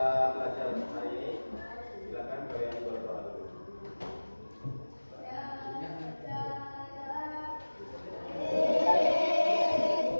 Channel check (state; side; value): inverted; both; correlation -1.00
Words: belajar hari ini, silakan kalian berdoa dulu.